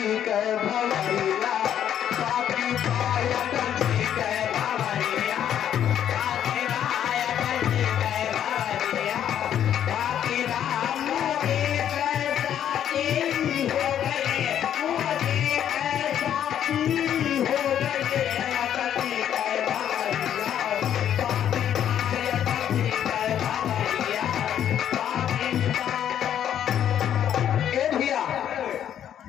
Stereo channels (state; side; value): quieter; right; 10.0 dB